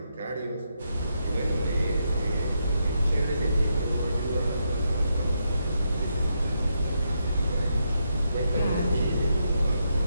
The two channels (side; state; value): both; inverted; correlation -0.81